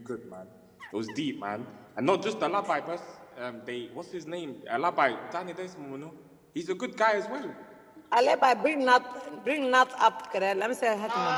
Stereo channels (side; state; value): both; identical; correlation 1.00